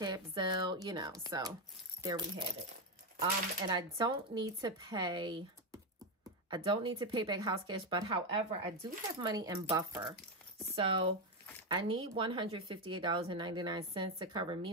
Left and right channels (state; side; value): normal; both; correlation 0.09